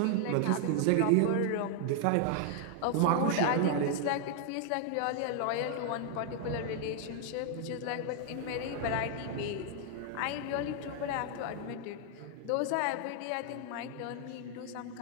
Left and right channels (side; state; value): both; different; correlation 0.00